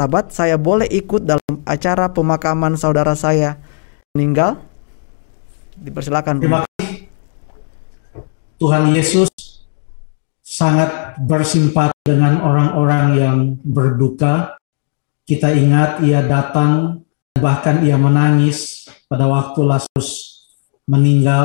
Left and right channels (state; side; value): silent; right; digital silence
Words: saya boleh ikut dalam acara pemakaman saudara saya meninggal? Dipersilakan. Terima kasih. Tuhan Yesus sangat bersimpati dengan orang-orang yang berduka. Kita ingat ia datang, bahkan ia menangis pada waktu Lazarus